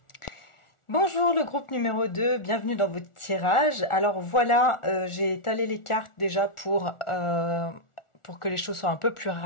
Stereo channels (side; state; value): right; late; 1.4 ms